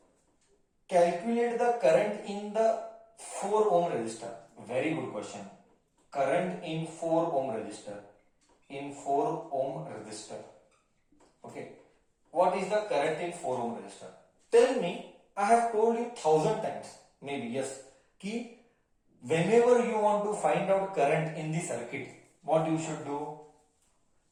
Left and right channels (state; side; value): identical; both; correlation 1.00